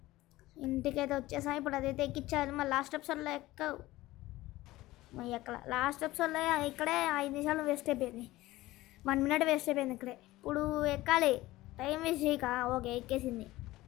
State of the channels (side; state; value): right; quieter; 17.6 dB